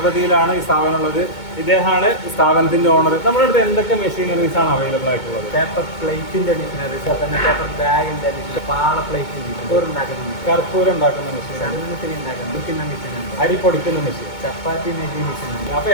ഈ സ്ഥാപനം ഉള്ളത്. ഇദ്ദേഹമാണ് സ്ഥാപനത്തിന്റെ ഓണർ. നമ്മുടെ അടുത്ത് എന്തൊക്കെ മെഷീനറീസ് ആണ് അവൈലബിൾ ആയിട്ടുള്ളത്? പേപ്പർ പ്ലേറ്റിന്റെ മെഷീനറീസ്, തന്നെ പേപ്പർ ബാഗിന്റെ പാള പ്ലേറ്റിന്റെ കർപ്പൂരം ഉണ്ടാക്കുന്ന മെഷീൻ, ഉണ്ടാക്കുന്ന മെഷീൻ, അരി പൊടിക്കുന്ന മെഷീൻ, ചപ്പാത്തി മേക്കിംഗ് മെഷീൻ. അപ്പൊ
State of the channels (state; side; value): late; right; 2.2 ms